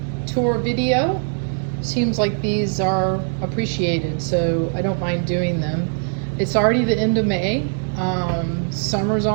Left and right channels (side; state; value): left; silent; 60 dB below the other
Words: tour video. Seems like these are appreciated, so I don't mind doing them. It's already the end of May. Summer's